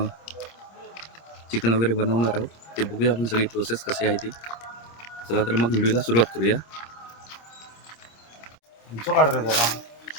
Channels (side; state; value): right; late; 26 ms